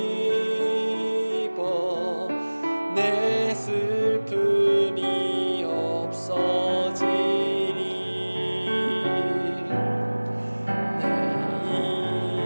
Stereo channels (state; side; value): inverted; both; correlation -1.00